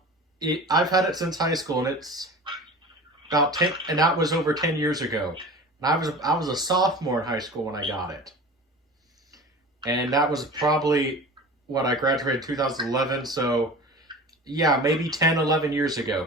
had it since high school, and it's about 10, and that was over 10 years ago. And I was a sophomore in high school when I got it. And that was probably what I graduated in 2011. So, yeah, maybe 10, 11 years ago,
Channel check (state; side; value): normal; both; correlation 0.37